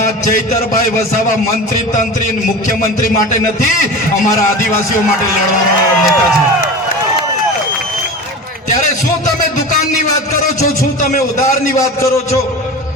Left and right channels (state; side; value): normal; both; correlation 0.31